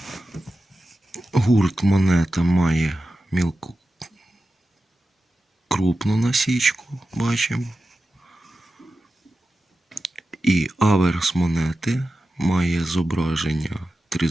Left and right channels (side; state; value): both; normal; correlation 0.92